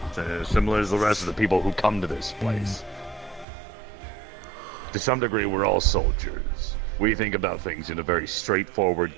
Similar as the rest of the people who come to this place. To some degree, we're all soldiers. We think about things in a very straightforward,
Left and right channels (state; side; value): drops out; left; at 3.5 s